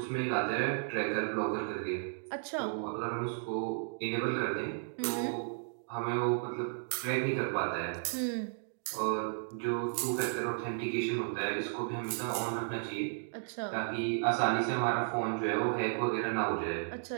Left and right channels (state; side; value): silent; left; digital silence